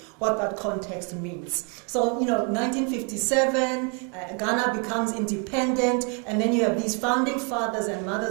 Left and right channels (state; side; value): quieter; left; 36.6 dB